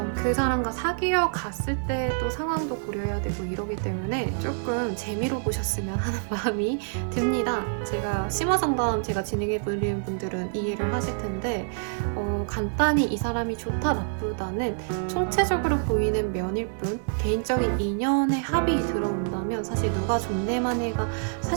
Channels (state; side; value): silent; left; digital silence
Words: 그 사람과 사귀어 갔을 때 또 상황도 고려해야 되고 이러기 때문에 조금 재미로 보셨으면 하는 마음이 듭니다. 제가 심화상담 제가 진행해보는 분들은 이해를 하실 텐데 간단히 이 사람이 좋다 나쁘다는 총체적으로 보이는 면일 뿐 개인적인 인연의 합이 들어온다면 사실 누가 좋네만 해가